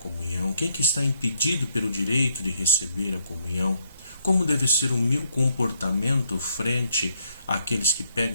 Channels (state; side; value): inverted; both; correlation -0.72